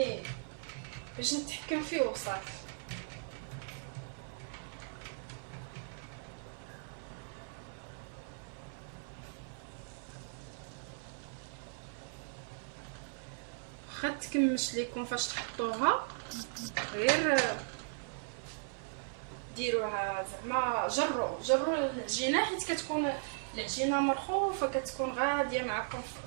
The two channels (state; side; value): silent; left; 53 dB below the other